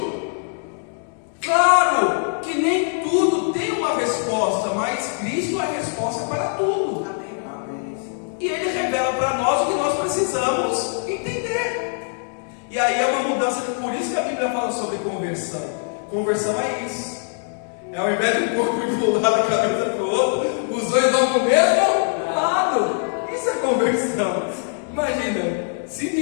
Claro que nem tudo tem uma resposta, mas Cristo é a resposta para tudo. E Ele revela para nós o que nós precisamos entender. E aí é uma mudança, por isso que a Bíblia fala sobre conversão. Conversão é isso. É ao invés de um corpo ir para um lado, a cabeça para o outro, os dois vão para o mesmo lado. Isso é conversão. Imagina,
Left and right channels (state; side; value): silent; right; 64 dB below the other